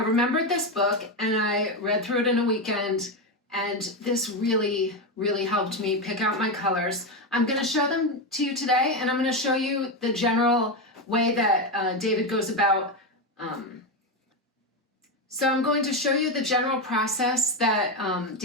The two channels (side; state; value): both; normal; correlation 0.11